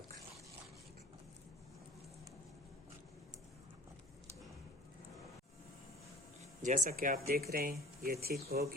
जैसा कि आप देख रहे हैं ये थिक हो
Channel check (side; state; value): both; normal; correlation 0.46